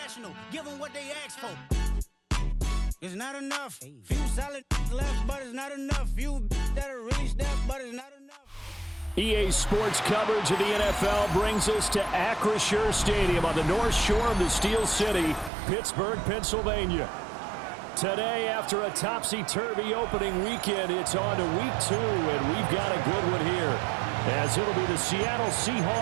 give them what they ask for. It's not enough. Few solid left, but it's not enough. Few that are really step, but it's not enough. EA Sports coverage of the NFL brings us to Acrisure Stadium on the north shore of the Steel City, Pittsburgh, Pennsylvania. Today, after a topsy-turvy opening weekend, it's on to week 2, and we've got a good one here, as it'll be the Seattle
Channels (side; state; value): left; drops out; at 15.5 s